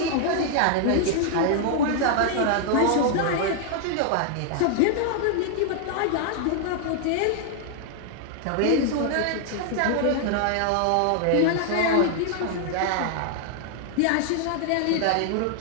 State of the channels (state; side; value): different; both; correlation 0.00